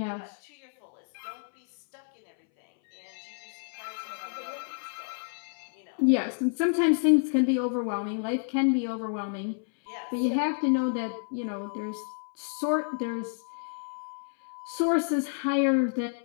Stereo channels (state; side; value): silent; right; 58 dB below the other